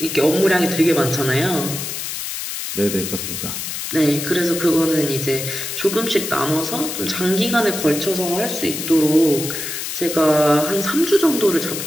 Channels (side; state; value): left; noise; hiss, 5 dB below the sound